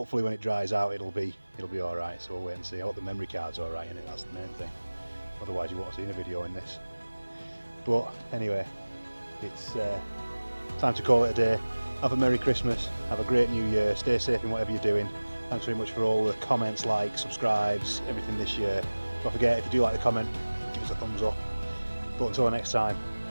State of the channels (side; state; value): both; inverted; correlation -1.00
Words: when it dries out it'll be all right. So we'll wait and see. I hope the memory card's all right in it. That's the main thing. Otherwise you won't have seen a video in this. But anyway, it's time to call it a day. Have a Merry Christmas. Have a great New Year. Stay safe in whatever you're doing. Thanks very much for all the comments, likes, subscribes, everything this year. Don't forget, if you do like the comment, give us a thumbs up. But until next time,